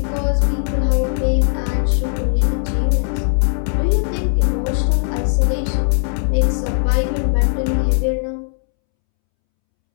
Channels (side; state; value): right; silent; 67 dB below the other